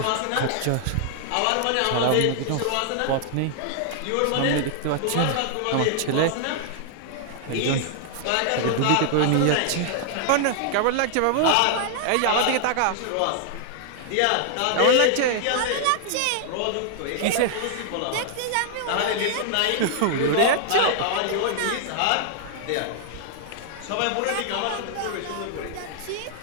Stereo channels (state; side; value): different; both; correlation 0.00